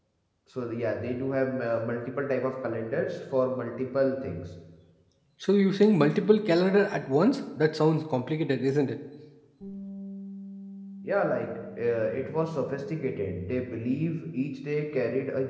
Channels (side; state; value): both; identical; correlation 1.00